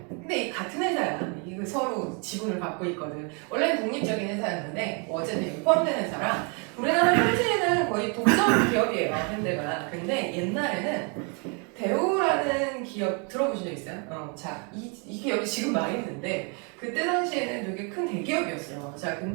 근데 이 같은 회사야. 이거 서로 지분을 갖고 있거든. 원래는 독립적인 회사였는데 어쨌든 포함된 회사라 우리나라 현재는 거의 독점 기업이에요, 현대가. 근데 옛날에는 대우라는 기업 들어보신 적 있어요? 자, 이 기업이 지금 망했는데 그때 당시에는 되게 큰 대기업이었어요. 자,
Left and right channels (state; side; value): quieter; left; 35.5 dB